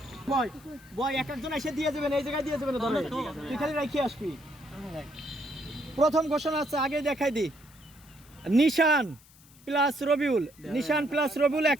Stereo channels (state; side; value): noise; left; hiss, 26 dB below the sound